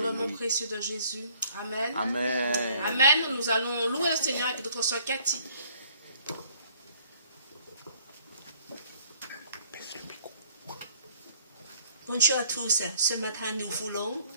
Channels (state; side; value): inverted; both; correlation -0.58